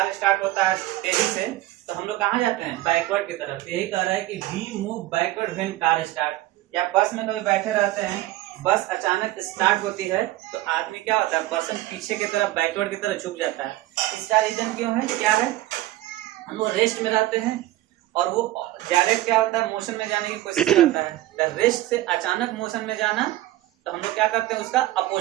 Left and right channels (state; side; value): quieter; left; 16.1 dB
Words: स्टार्ट होता है तेजी से तो हम लोग कहाँ जाते हैं? बैकवर्ड की तरफ। यही कह रहा है कि we move backward when car start. या बस में कभी बैठे रहते हैं, बस अचानक स्टार्ट होती है तो आदमी क्या होता है? पर्सन पीछे की तरफ, बैकवर्ड की तरफ झुक जाता है। इसका रीजन क्यों है? क्या है? हम लोग रेस्ट में रहते हैं और वो डायरेक्ट क्या होता है, मोशन में जाने की कोशिश करता है। रेस्ट से अचानक मोशन में जाना तो हम लोग क्या करते हैं, उसका